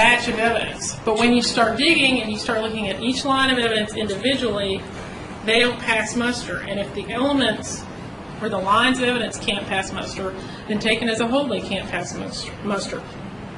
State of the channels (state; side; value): identical; both; correlation 1.00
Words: of evidence. But when you start digging and you start looking at each line of evidence individually, they don't pass muster. And if the elements or the lines of evidence can't pass muster, then taken as a whole they can't pass muster.